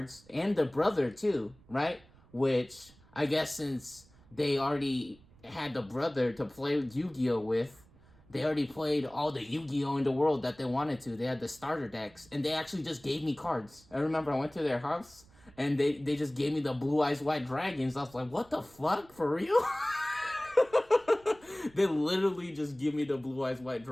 and the brother too, right? Which I guess since they already had the brother to play Yu-Gi-Oh with, they already played all the Yu-Gi-Oh in the world that they wanted to. They had the starter decks, and they actually just gave me cards. I remember I went to their house, and they just gave me the Blue Eyes White Dragons. I was like, what the fuck, for real? They literally just give me the Blue Eyes White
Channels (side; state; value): right; noise; rumble, 26 dB below the sound